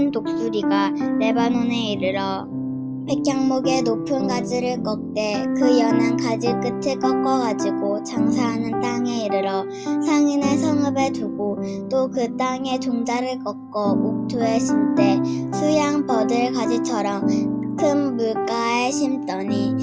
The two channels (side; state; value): both; identical; correlation 1.00